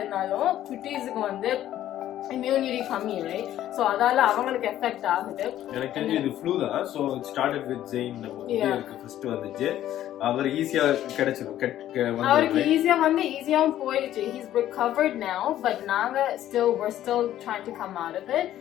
இருந்தாலும் குட்டீஸுக்கு வந்து immunity கம்மி, right? So அதால அவங்களுக்கு எஃபெக்ட் ஆகுது. எனக்கு தெரிஞ்சு இது ஃப்ளூ தான். So it started with Zayn. நமக்கு ஃபர்ஸ்ட் வந்துச்சு, அவர் ஈஸியா கிடைச்சிரும், அவருக்கு ஈஸியா வந்து ஈஸியாவும் போயிடுச்சு. he's recovered now, but நாங்க we're still trying to come out of it.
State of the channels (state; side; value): quieter; right; 12.5 dB